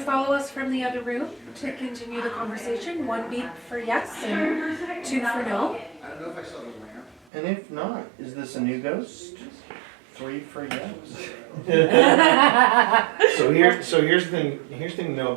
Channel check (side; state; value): left; drops out; at 7.2 s